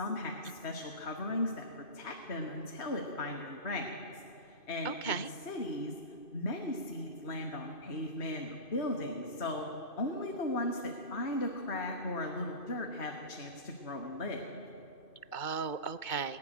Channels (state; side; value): late; right; 2.5 ms